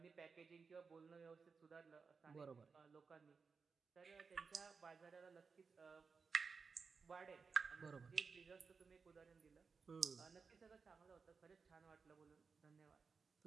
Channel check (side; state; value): left; quieter; 5.1 dB